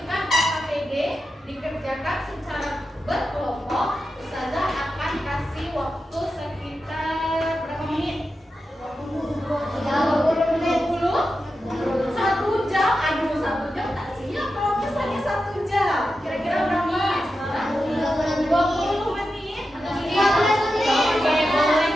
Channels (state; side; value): normal; both; correlation 0.90